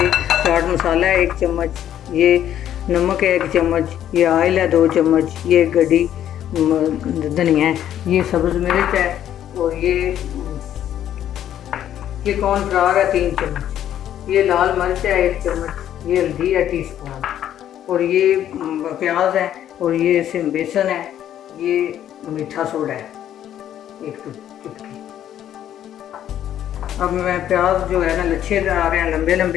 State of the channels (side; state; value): right; quieter; 10.9 dB